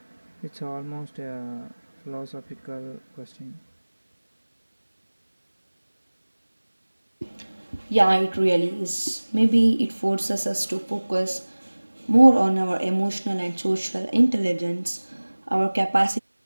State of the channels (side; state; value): both; inverted; correlation -1.00